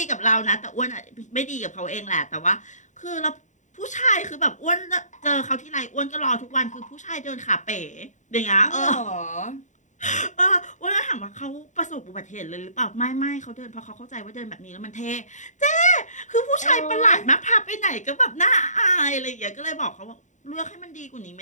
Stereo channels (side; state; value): right; late; 0.35 ms